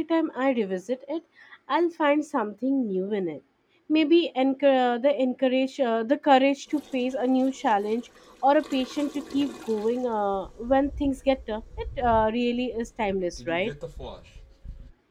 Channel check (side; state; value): both; identical; correlation 1.00